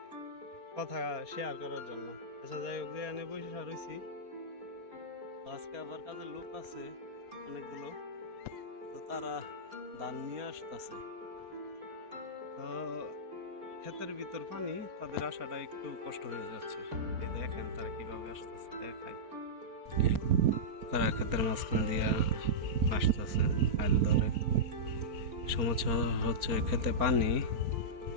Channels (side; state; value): left; late; 4.4 ms